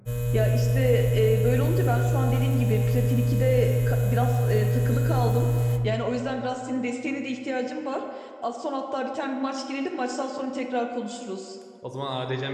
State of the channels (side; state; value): both; identical; correlation 1.00